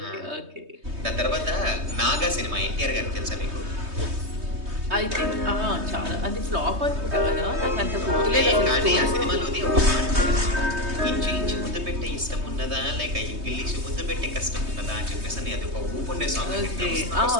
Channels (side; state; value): left; late; 3.2 ms